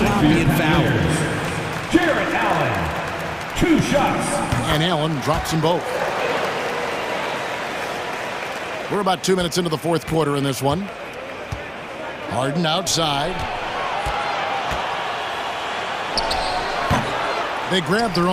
and foul. Jared Allen, 2 shots. And Allen drops them both. We're about 2 minutes into the fourth quarter in this one. Harden outside. They grab their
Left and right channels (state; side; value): identical; both; correlation 1.00